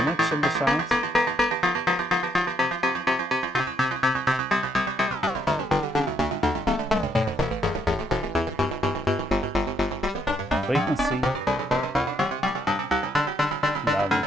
in the sound. Frequency. Now we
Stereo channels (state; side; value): normal; both; correlation 0.72